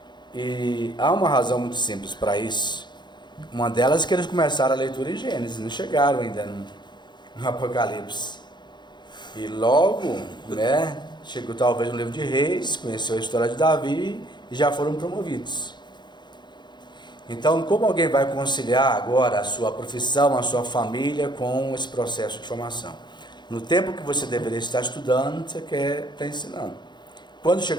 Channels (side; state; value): right; late; 0.21 ms